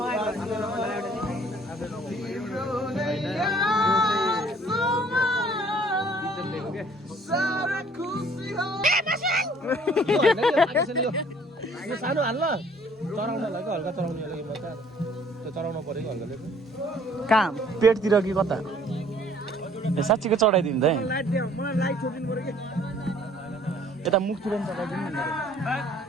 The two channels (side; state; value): both; normal; correlation 0.57